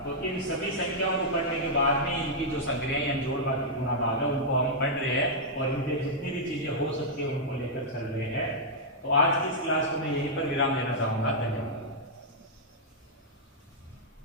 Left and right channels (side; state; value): both; normal; correlation -0.07